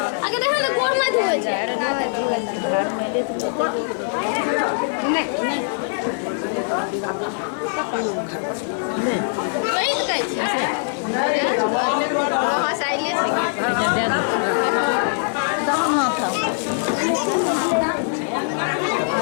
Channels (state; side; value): silent; right; digital silence